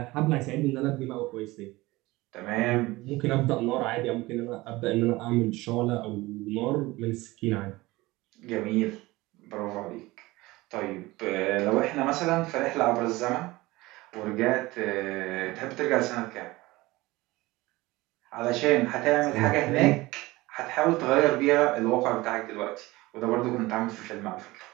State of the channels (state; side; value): quieter; left; 20.2 dB